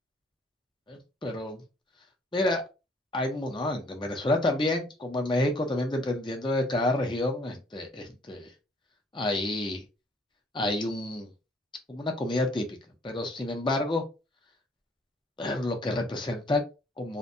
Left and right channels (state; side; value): normal; both; correlation 0.61